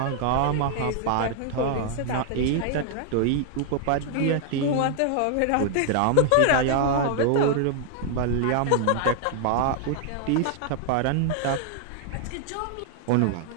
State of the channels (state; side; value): different; both; correlation 0.00